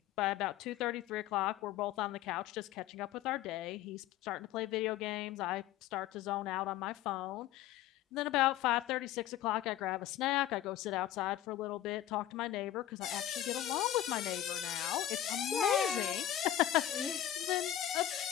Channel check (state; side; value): quieter; right; 12.5 dB